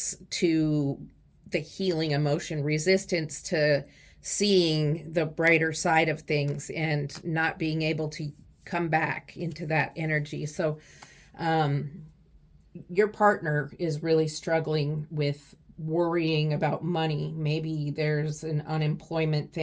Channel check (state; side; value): identical; both; correlation 1.00